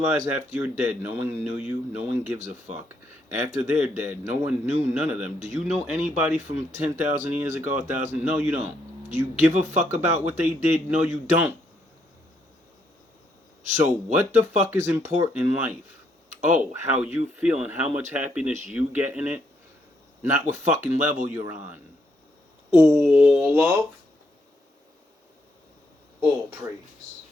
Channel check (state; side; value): normal; both; correlation 0.75